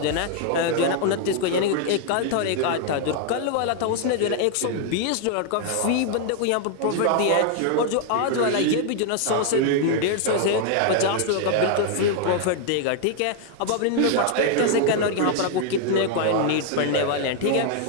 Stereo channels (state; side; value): different; both; correlation 0.00